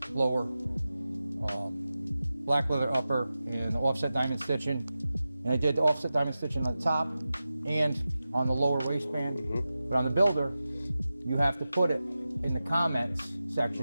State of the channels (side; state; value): both; inverted; correlation -0.94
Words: blower, black leather upper, and offset diamond stitching. And I did the offset diamond stitching on the top and on the lower waistband. But on the builder, you have to put it in the comments